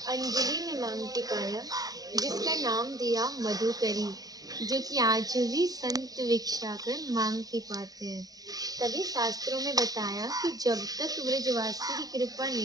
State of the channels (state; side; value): late; left; 0.18 ms